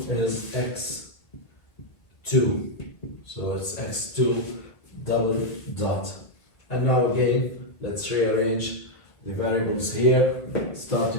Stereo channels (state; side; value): late; right; 1.5 ms